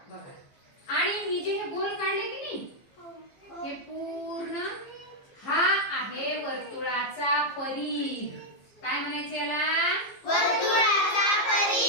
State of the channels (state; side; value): late; right; 15 ms